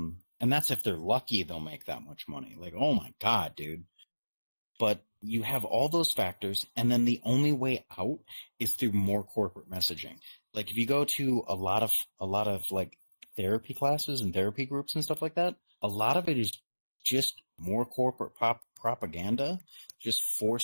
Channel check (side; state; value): both; inverted; correlation -1.00